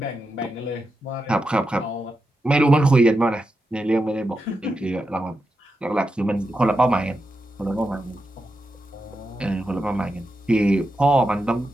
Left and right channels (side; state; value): both; normal; correlation 0.87